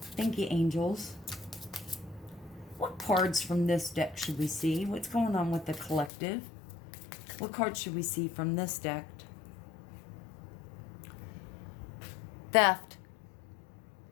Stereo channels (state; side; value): drops out; right; at 6.1 s